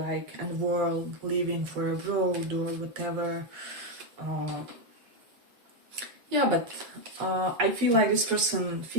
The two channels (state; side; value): late; left; 8.2 ms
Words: a world, leaving for a road or whatever. Yeah, but I feel like this person